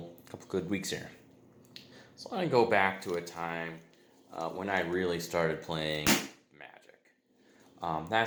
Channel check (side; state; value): both; identical; correlation 1.00